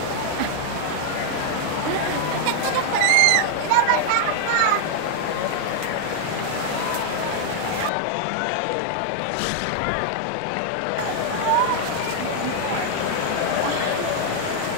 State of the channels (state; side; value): different; both; correlation 0.00